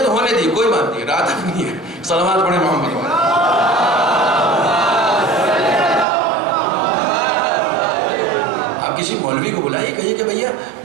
تو ہونے دیے, کوئی بات نہیں, رات تک نہیں ہے. صلوات پڑھیں محمد والے. آپ کسی مولوی کو بلائیے, کہیے کہ بھیا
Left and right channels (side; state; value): left; drops out; at 6.1 s